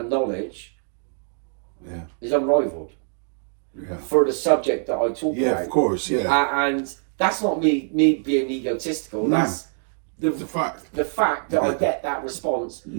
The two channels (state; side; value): silent; left; 62 dB below the other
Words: knowledge is unrivaled. Yeah. For the subject that I talk about. Yeah, of course, yeah. And that's not me being egotistical. No. That's the fact. The fact that I get that response,